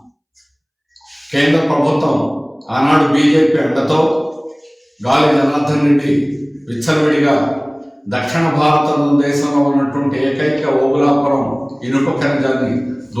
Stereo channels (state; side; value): identical; both; correlation 1.00